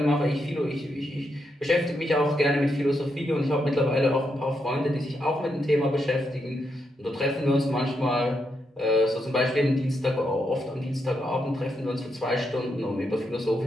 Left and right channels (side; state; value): both; normal; correlation 0.81